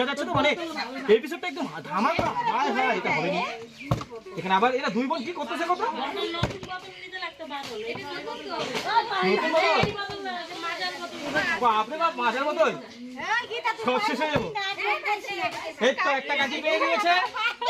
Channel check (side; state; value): both; identical; correlation 1.00